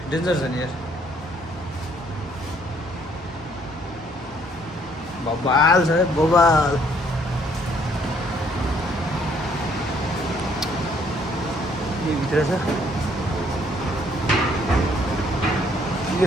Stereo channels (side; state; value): both; normal; correlation 0.64